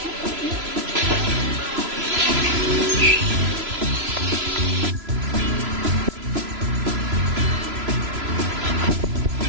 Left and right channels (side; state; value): left; late; 3.0 ms